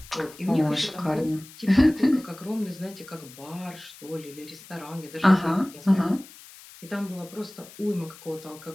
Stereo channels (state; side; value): noise; left; hiss, 19 dB below the sound